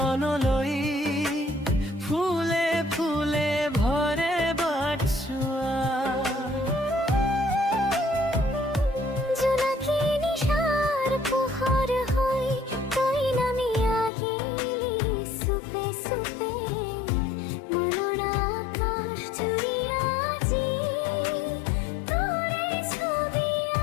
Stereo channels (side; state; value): right; drops out; at 14.1 s